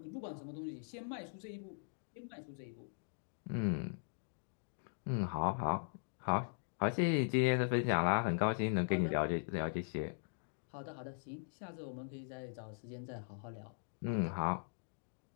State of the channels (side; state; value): right; silent; digital silence